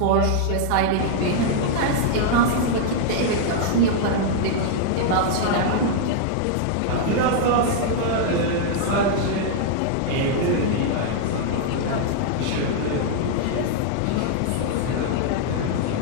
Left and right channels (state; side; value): different; both; correlation -0.01